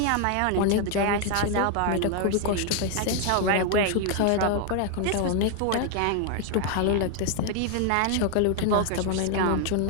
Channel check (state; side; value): different; both; correlation 0.00